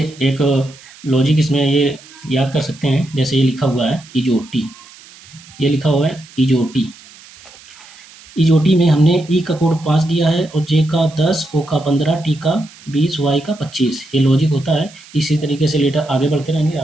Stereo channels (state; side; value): noise; right; hiss, 22 dB below the sound